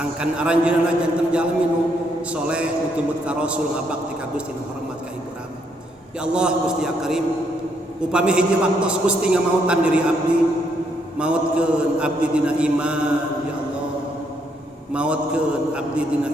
aranjeunna janten jalmi nu soleh nu tumut ka Rasul ngabakti ka Gusti nu hormat ka Ibu Rama. Ya Allah Gusti ya Karim, upami hiji waktos Gusti ngamautan diri abdi, mautkeun abdi dina iman ya Allah. Mautkeun abdi dina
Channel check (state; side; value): normal; both; correlation 0.74